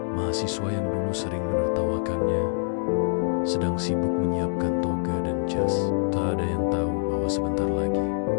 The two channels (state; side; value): silent; right; digital silence